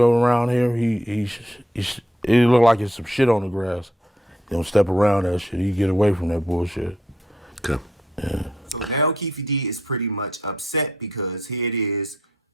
around here, it look like it's some shit on the grass. He don't step around that shit. He get away from that bullshit. Okay. Yeah. So now Keefe D is pretty much upset because here it is.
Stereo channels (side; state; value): both; normal; correlation 0.75